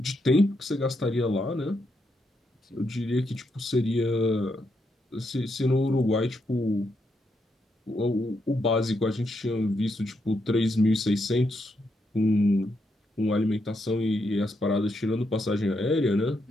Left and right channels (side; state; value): both; normal; correlation 0.80